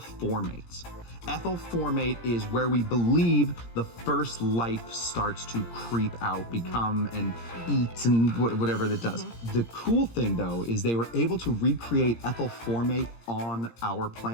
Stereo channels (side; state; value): right; late; 17 ms